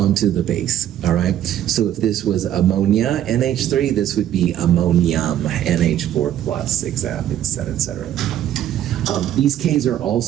the base, all right? So if this was ammonia, NH3, this would be ammonium, NH4 plus, et cetera, et cetera. These Ks are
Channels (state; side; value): quieter; left; 11.4 dB